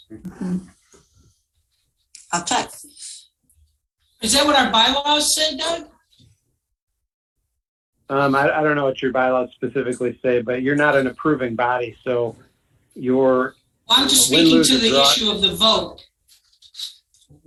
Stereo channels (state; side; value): identical; both; correlation 1.00